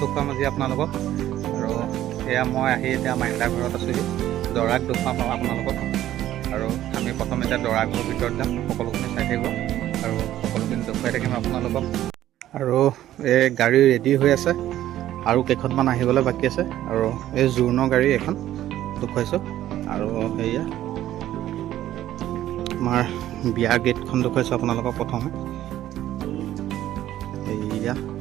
দেখুৱাম আজি আপোনালোকক। আৰু এয়া মই আহি এতিয়া মাইনাদা ঘৰত আছোঁহি, দৰাক দেখুৱাম আপোনালোকক। আৰু আমি প্ৰথমে এতিয়া দৰা ঘৰৰ ভিতৰত যাম, সকলোখিনি চাই থাকিব আৰু সকলোখিনি দেখুৱাই থাকিম আপোনালোকক। আৰু এই গাড়ী ৰেডি হৈ আছে, আৰু কেইখনমান আহিবলৈ বাকী আছে। আৰু এই জোৰোণৰ গাড়ী এখন দেখুৱাইছোঁ। আৰু সেয়া আমাৰ বিয়া গেটখন দেখুৱাইছোঁ আপোনালোকক প্ৰথমে। সেয়া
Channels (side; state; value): left; quieter; 13.1 dB